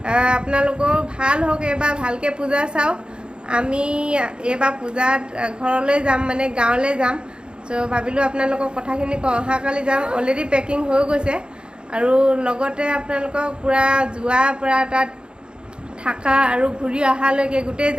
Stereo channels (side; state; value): left; late; 0.052 ms